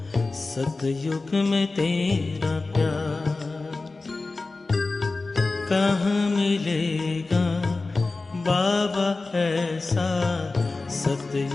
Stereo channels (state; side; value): quieter; right; 3.5 dB